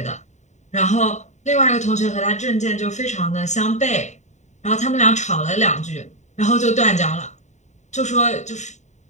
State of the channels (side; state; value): right; late; 0.34 ms